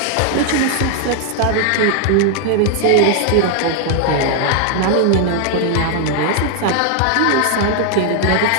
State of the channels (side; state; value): both; different; correlation 0.00